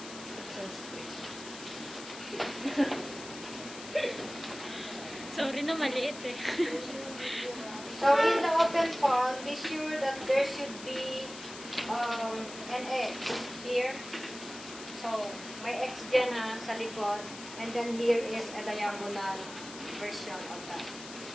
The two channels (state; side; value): noise; left; hiss, 13 dB below the sound